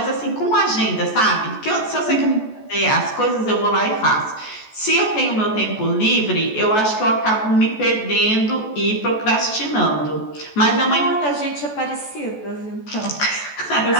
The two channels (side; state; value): right; late; 14 ms